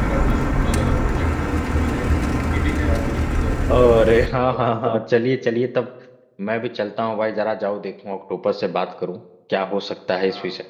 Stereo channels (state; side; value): identical; both; correlation 1.00